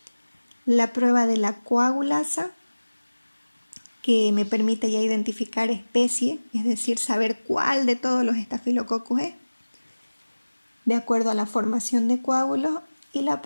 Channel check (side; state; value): both; inverted; correlation -1.00